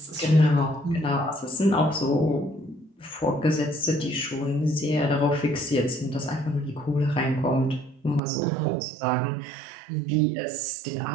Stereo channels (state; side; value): drops out; left; at 8.2 s